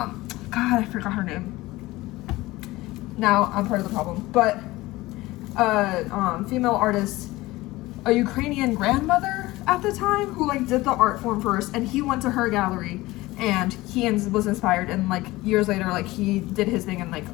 I forgot her name. Now I'm part of the problem, but female artist, a Ukrainian grandmother at the time who like did the art form first, and he went to her gallery and he was inspired, and like years later like he did his thing, and like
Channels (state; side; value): quieter; right; 19.2 dB